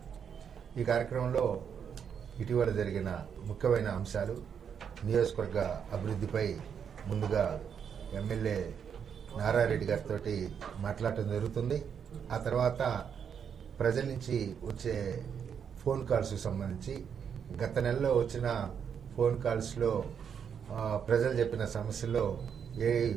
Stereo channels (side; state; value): left; quieter; 7.5 dB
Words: ఈ కార్యక్రమంలో ఇటీవల జరిగిన ముఖ్యమైన అంశాలు, నియోజకవర్గ అభివృద్ధిపై ముందుగా ఎమ్మెల్యే నారాయణ రెడ్డి గారితో మాట్లాడటం జరుగుతుంది. ఆ తర్వాత ప్రజల నుంచి వచ్చే ఫోన్ కాల్స్కి సంబంధించి గత నెలలో వచ్చిన ఫోన్ కాల్స్లో ప్రజలు చెప్పిన సమస్యల్లో ఏవి